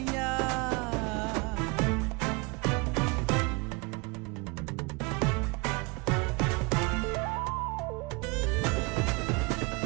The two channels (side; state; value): left; quieter; 28.2 dB